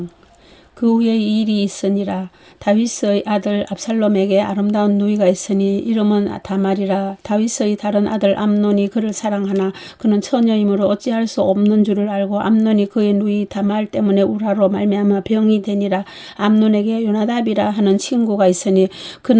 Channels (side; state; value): both; identical; correlation 1.00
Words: 그 후에 이 일이 있으니라. 다윗의 아들 압살롬에게 아름다운 누이가 있으니 이름은 다말이라. 다윗의 다른 아들 암논이 그를 사랑하나 그는 처녀이므로 어찌할 수 없는 줄을 알고 암논이 그의 누이 다말 때문에 우라로 말미암아 병이 되니라. 암논에게 요나답이라 하는 친구가 있으니